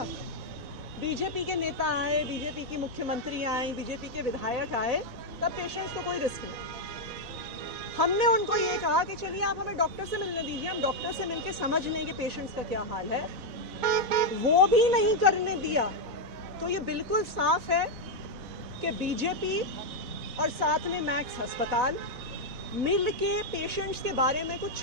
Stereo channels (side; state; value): left; late; 4.0 ms